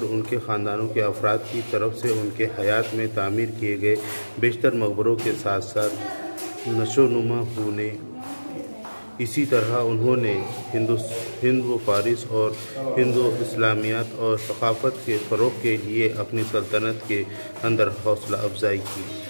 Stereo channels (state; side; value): inverted; both; correlation -1.00